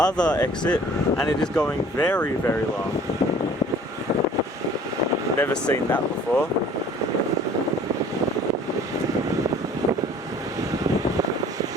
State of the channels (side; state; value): both; normal; correlation 0.51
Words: exit, and it is going very, very long. Never seen that before.